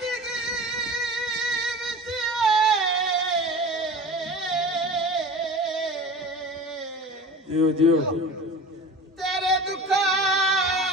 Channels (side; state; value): both; normal; correlation 0.36